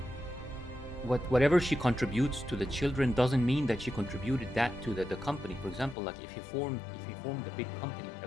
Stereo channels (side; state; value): right; drops out; at 6.0 s